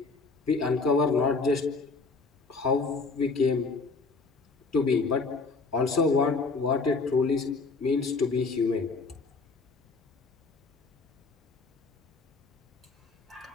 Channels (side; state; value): right; quieter; 4.1 dB